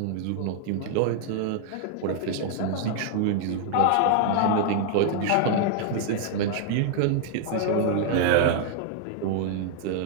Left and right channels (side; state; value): both; different; correlation 0.00